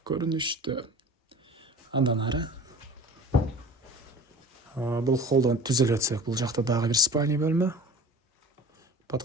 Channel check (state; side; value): normal; both; correlation 0.39